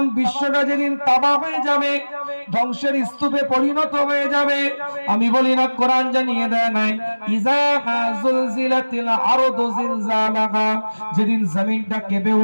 বিশ্বটা যেদিন তাবাহ হয়ে যাবে, ধ্বংসের স্তূপে পরিণত হয়ে যাবে, আমি বলি না কোরআন জানিয়ে দেয় নাই ইজা যুলজিলাতিল আরদু জিলজালাহা, যেদিন জমিনটা কেঁপে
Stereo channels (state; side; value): inverted; both; correlation -1.00